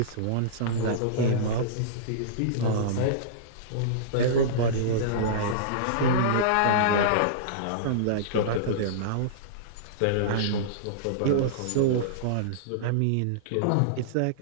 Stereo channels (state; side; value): different; both; correlation -0.03